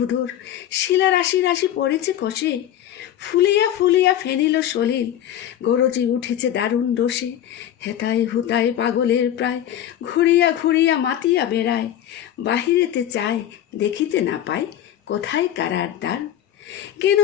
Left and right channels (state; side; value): quieter; right; 11.3 dB